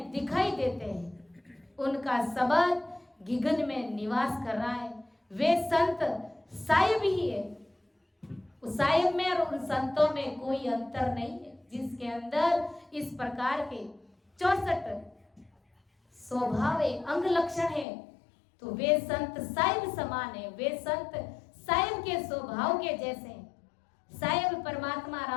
दिखाई देते हैं, उनका शब्द गिगन में निवास कर रहा है। वे संत साहिब ही है। उस साहिब में और उन संतों में कोई अंतर नहीं है, जिसके अंदर इस प्रकार के 64 स्वभाव है, अंग लक्षण है। तो वे संत साहिब समान है, वे संत साहिब के स्वभाव के जैसे हैं। साहिब परमात्मा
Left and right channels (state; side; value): drops out; right; at 17.9 s